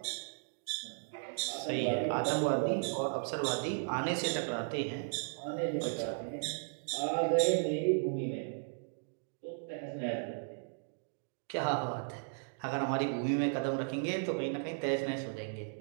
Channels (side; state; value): left; silent; digital silence